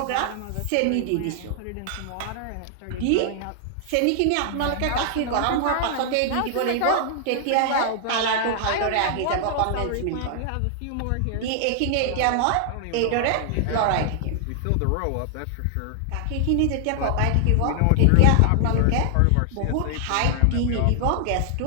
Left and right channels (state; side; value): different; both; correlation 0.00